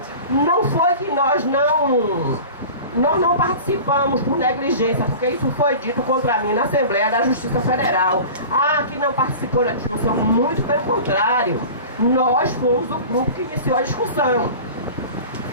não foi que nós não participamos por negligência, porque isso foi dito contra mim na Assembleia da Justiça Federal. Ah, que não participou da discussão, muito pelo contrário. Nós fomos o grupo que iniciou a discussão.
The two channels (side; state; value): both; inverted; correlation -0.37